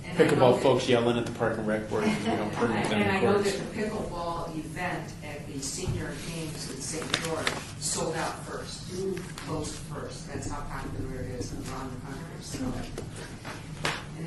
pickleball folks yelling at the Park and Rec board because we don't permit them And I in know courts. that the pickleball event at the senior games in St. George sold out first, closed first. That's how popular it is around the country. So, and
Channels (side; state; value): both; identical; correlation 1.00